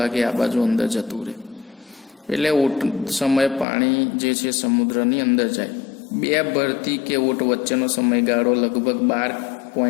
આ બાજુ અંદર જતું રહે. એટલે ઓટ સમયે પાણી જે છે સમુદ્રની અંદર જાય. 2 ભરતી કે ઓટ વચ્ચેનો સમયગાળો લગભગ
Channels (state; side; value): drops out; right; at 3.7 s